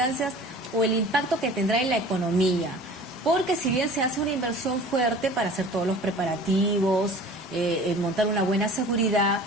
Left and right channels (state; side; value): normal; both; correlation 0.43